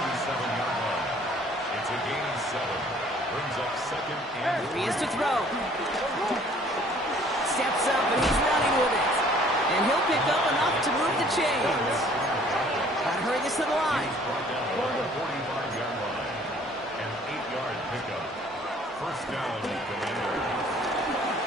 line. It's a gain of 7. Brings up 2nd and Here he is to throw. Steps up and he's running with it. And he'll pick up enough to move the chains. Gotta hurry this to the line. brought down at the 45-yard line. An 8-yard pickup. First down, Commanders.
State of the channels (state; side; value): normal; both; correlation 0.56